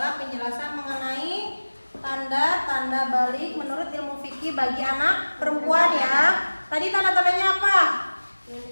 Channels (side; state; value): both; inverted; correlation -1.00